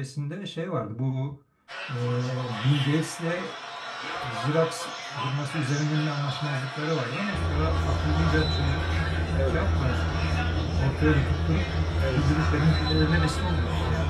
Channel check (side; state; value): both; identical; correlation 1.00